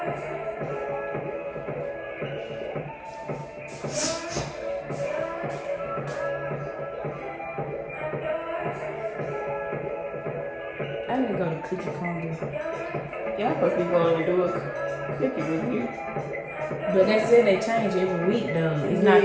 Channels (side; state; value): both; identical; correlation 1.00